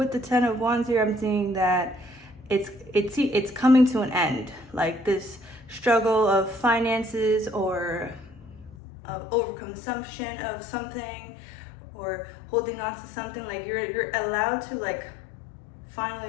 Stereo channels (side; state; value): right; drops out; at 8.8 s